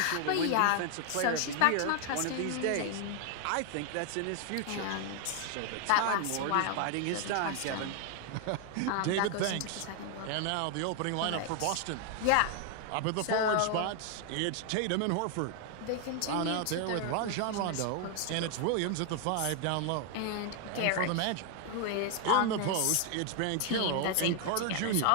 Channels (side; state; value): both; different; correlation 0.00